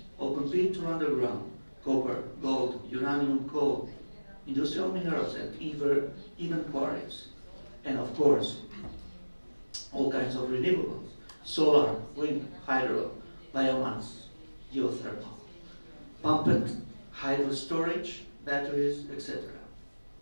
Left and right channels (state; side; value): inverted; both; correlation -1.00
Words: open pit or underground, copper, gold, uranium, coal, industrial minerals, and even quarries. And of course, all kinds of renewables, solar, wind, hydro, biomass, geothermal, pumped hydro storage, batteries, etc.